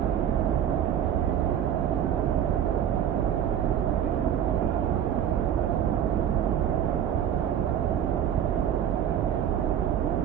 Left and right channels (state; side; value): quieter; left; 9.7 dB